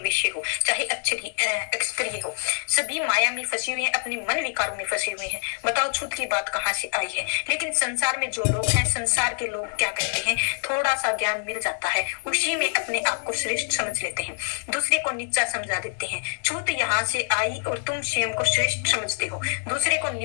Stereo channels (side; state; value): right; silent; digital silence